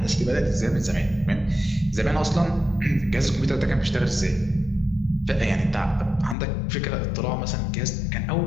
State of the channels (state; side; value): drops out; right; at 6.4 s